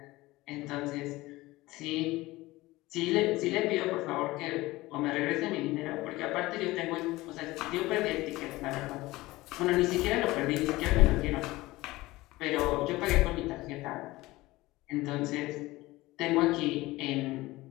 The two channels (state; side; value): quieter; right; 19.3 dB